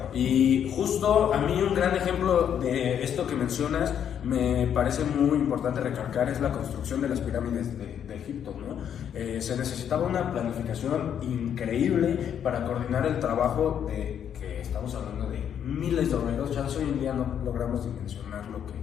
y justo a mí un gran ejemplo de esto que mencionas me parece muy importante recalcar es la construcción de las pirámides de Egipto, ¿no? Se necesitaba una planificación increíble para coordinar el trabajo que estamos hablando de miles de obreros. Ya hoy en día no logramos dimensionar lo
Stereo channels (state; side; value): quieter; right; 8.9 dB